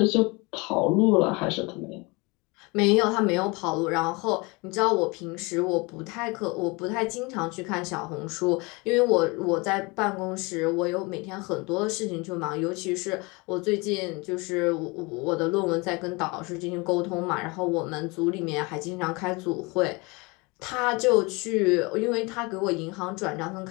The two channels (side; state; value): right; quieter; 26.7 dB